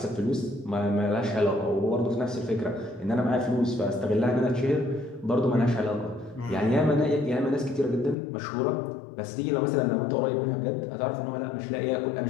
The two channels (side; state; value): right; drops out; at 8.2 s